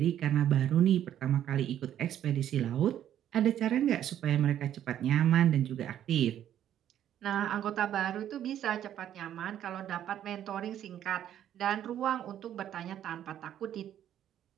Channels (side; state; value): left; quieter; 10.9 dB